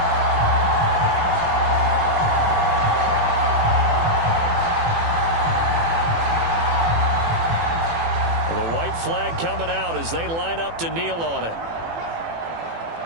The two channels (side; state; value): left; late; 18 ms